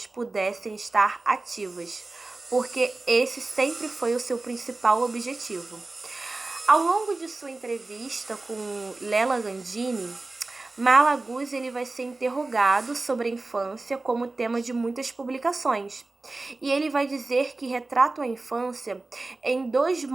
pudessem estar ativas, porque esse sempre foi o seu principal objetivo. Ao longo de sua entrevista com Lela Gandini, Malaguzzi ele vai ser interrogado sobre a infância como tema de muitas publicações. E ele vai dizer que retrata a infância em 2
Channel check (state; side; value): quieter; left; 3.3 dB